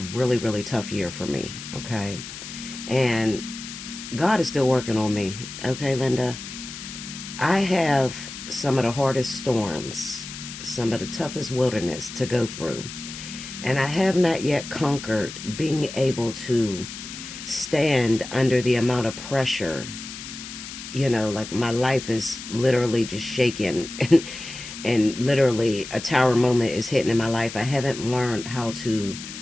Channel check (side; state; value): left; noise; hiss, 11 dB below the sound